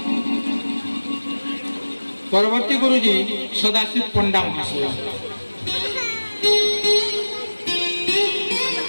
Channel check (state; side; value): inverted; both; correlation -1.00